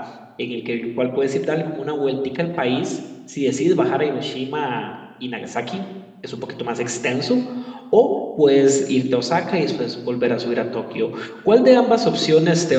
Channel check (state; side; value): identical; both; correlation 1.00